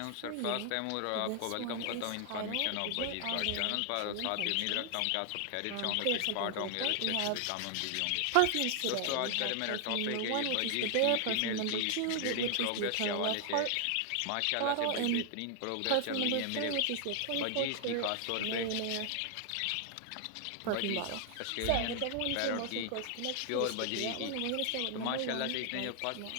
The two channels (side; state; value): both; different; correlation 0.00